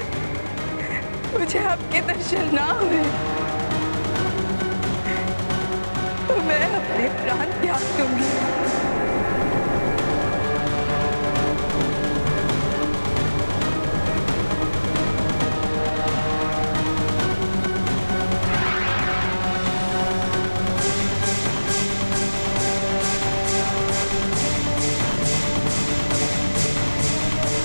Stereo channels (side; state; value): both; inverted; correlation -1.00